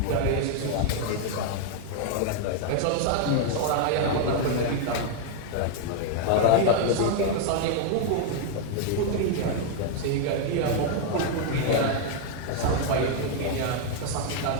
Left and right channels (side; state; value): both; different; correlation 0.00